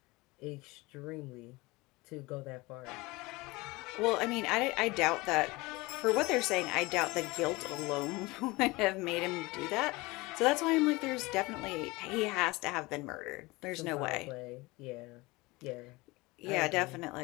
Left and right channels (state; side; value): quieter; right; 22.8 dB